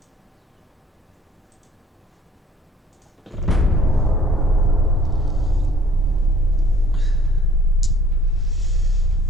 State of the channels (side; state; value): both; normal; correlation 0.56